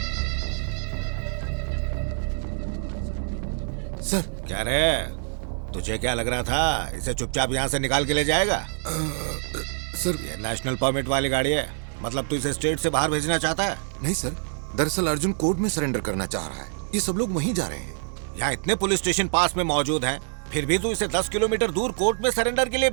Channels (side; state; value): left; silent; digital silence